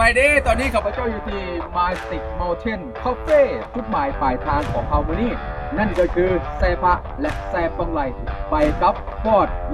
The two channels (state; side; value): identical; both; correlation 1.00